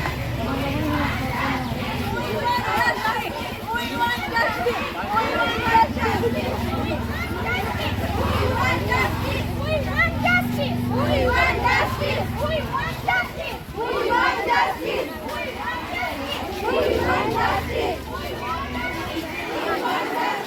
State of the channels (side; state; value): both; identical; correlation 1.00